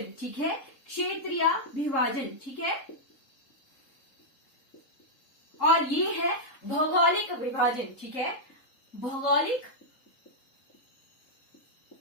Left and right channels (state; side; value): late; right; 3.7 ms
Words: ठीक है, क्षेत्रीय विभाजन, ठीक है। और ये है भौगोलिक विभाजन, ठीक है, भौगोलिक